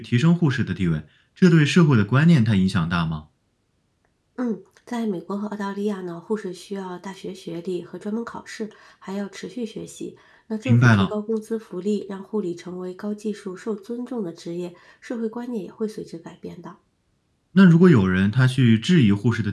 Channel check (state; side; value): identical; both; correlation 1.00